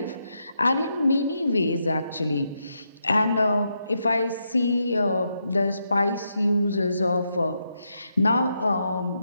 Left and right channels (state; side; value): inverted; both; correlation -0.82